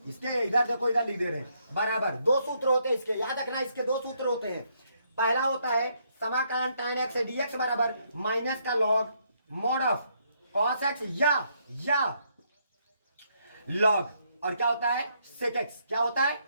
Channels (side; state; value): both; inverted; correlation -0.73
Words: इसके इधर देखो, इधर लिख दे रहे हैं बराबर, दो सूत्र होते हैं इसके, याद रखना इसके दो सूत्र होते हैं। पहला होता है समाकलन tan x dx बराबर माइनस का log mod of cos x या log, और क्या होता है sec x, क्या होता है